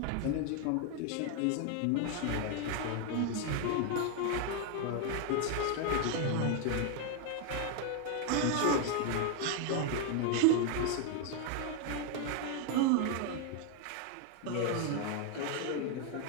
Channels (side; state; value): both; different; correlation 0.01